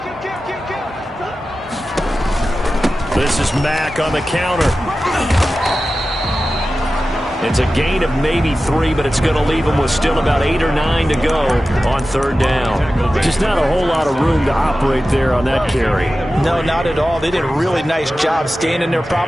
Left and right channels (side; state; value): both; normal; correlation 0.94